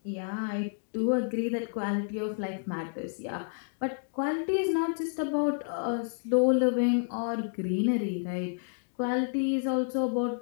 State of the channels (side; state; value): right; silent; digital silence